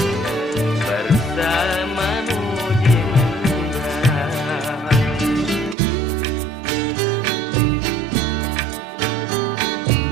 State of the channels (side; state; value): left; drops out; at 5.8 s